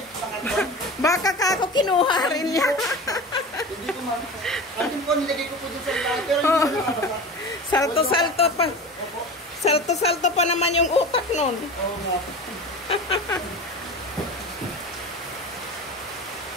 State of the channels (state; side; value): normal; both; correlation 0.32